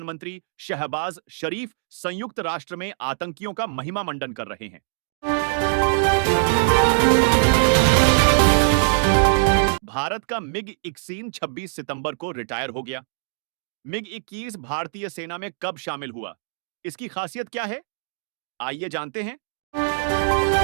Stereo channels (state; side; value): silent; left; digital silence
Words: शहबाज शरीफ संयुक्त राष्ट्र में आतंकियों का महिमा मंडन कर रहे हैं। भारत का मिग-21 26 सितंबर को रिटायर हो गया। मिग-21 भारतीय सेना में कब शामिल हुआ? इसकी खासियत क्या है? आइए जानते हैं।